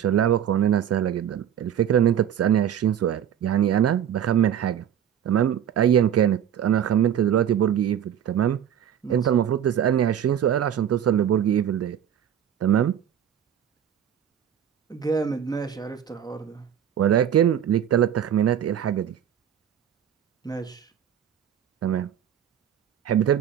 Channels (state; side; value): quieter; left; 9.6 dB